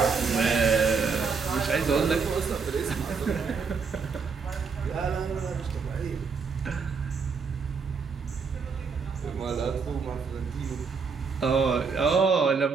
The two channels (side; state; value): left; quieter; 5.3 dB